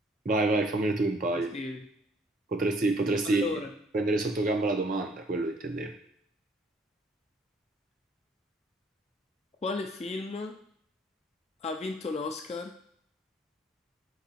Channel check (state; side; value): normal; both; correlation 0.61